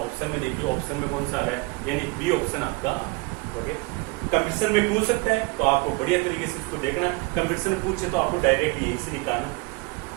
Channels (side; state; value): left; quieter; 25.8 dB